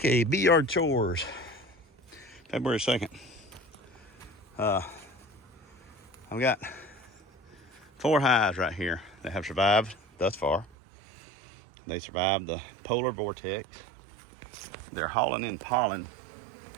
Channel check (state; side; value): drops out; left; at 10.7 s